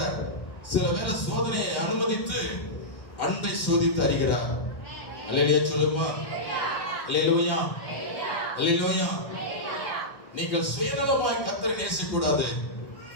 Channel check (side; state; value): right; late; 1.5 ms